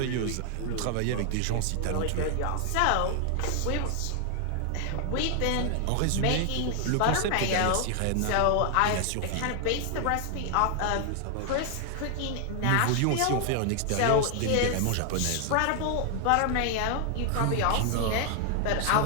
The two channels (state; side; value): different; both; correlation 0.00